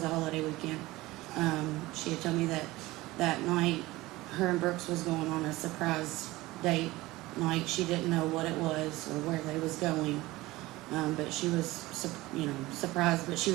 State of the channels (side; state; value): left; quieter; 19.2 dB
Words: a holiday weekend. She had told me that night her and Brooks was going on a surprise date night. She didn't know what it was or where they was going, but she was, surprised, but she